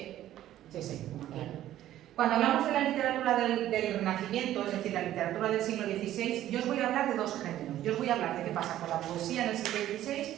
claro. Cuando hablamos de la literatura del Renacimiento, es decir, la literatura del siglo XVI, yo os voy a hablar de dos géneros. Yo os voy a hablar de qué pasa con la poesía en el siglo XVI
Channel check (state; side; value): quieter; left; 13.0 dB